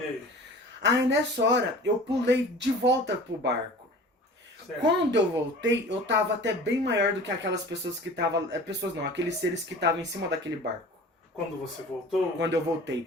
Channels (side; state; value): both; normal; correlation 0.42